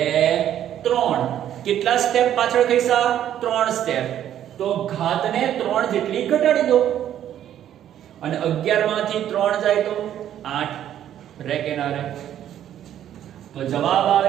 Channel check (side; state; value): left; quieter; 10.9 dB